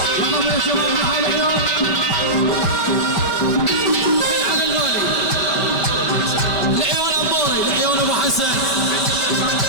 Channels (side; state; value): right; late; 5.2 ms